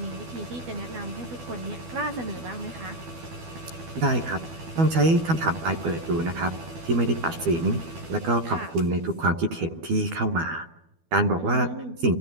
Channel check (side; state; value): left; late; 12 ms